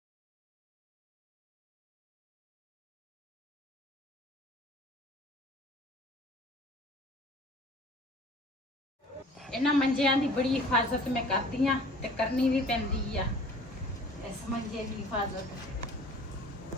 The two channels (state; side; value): normal; both; correlation 0.48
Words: ਇਹਨਾਂ ਮੰਜਿਆਂ ਦੀ ਬੜੀ ਹਿਫਾਜ਼ਤ ਮੈਂ ਕਰਦੀ ਆ ਤੇ ਕਰਨੀ ਵੀ ਪੈਂਦੀ ਆ। ਇਸ ਮੰਜੇ ਦੀ ਹਿਫਾਜ਼ਤ